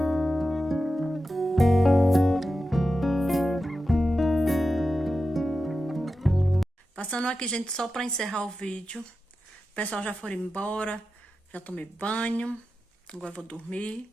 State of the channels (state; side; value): normal; both; correlation 0.91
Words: Passando aqui, gente, só pra encerrar o vídeo. O pessoal já foram embora. Já tomei banho. Agora eu vou dormir.